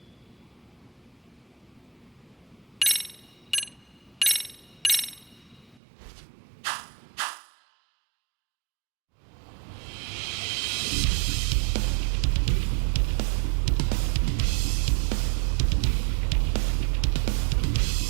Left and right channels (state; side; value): drops out; left; at 5.8 s